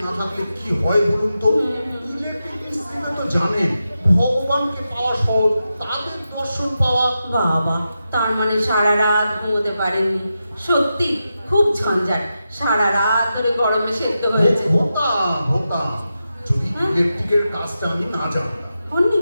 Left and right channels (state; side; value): inverted; both; correlation -0.89